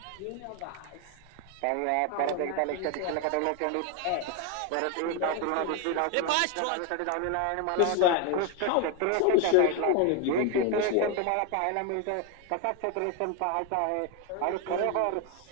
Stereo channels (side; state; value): both; different; correlation 0.01